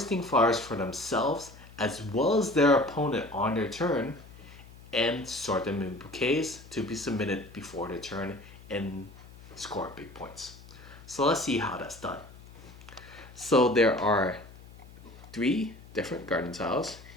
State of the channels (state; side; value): noise; left; hum, 20 dB below the sound